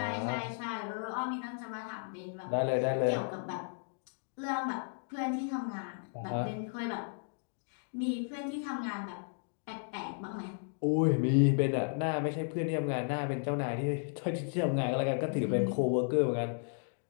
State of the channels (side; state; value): right; silent; digital silence